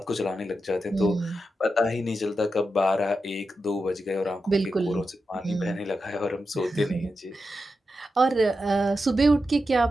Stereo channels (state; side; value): normal; both; correlation 0.89